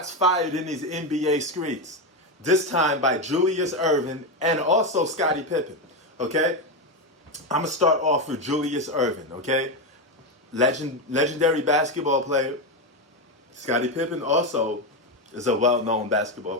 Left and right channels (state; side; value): normal; both; correlation 0.11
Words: fired in these NBA streets. This time by Julius Erving and also Scottie Pippen. Okay? I'm going to start off with Julius Erving. Okay? Legendary basketball player. Scottie Pippen also is a well-known basketball